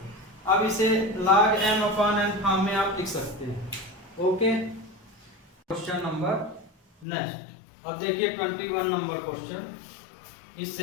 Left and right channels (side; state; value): right; drops out; at 7.1 s